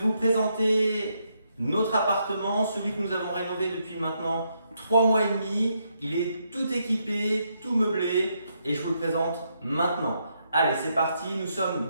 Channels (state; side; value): inverted; both; correlation -0.78